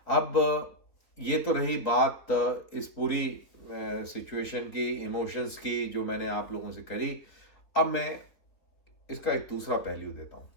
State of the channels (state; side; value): late; right; 3.7 ms